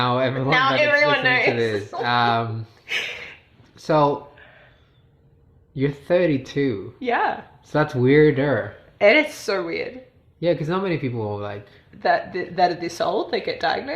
everyone, everyone knows. To this. So you're 32. Yeah. So that's weirder. It is so weird. Yeah, because not many people like that are this old, they get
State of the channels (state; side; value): identical; both; correlation 1.00